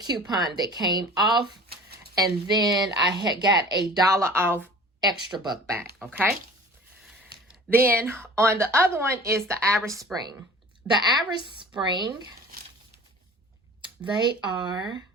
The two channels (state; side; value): normal; both; correlation 0.43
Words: that came off. And then I had got a $1 off extra buck back, okay? Then on the other one is the Irish Spring. The Irish Spring, they are,